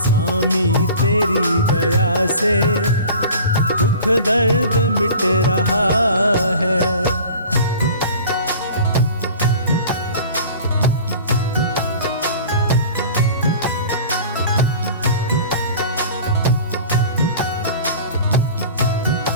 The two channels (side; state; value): both; inverted; correlation -0.42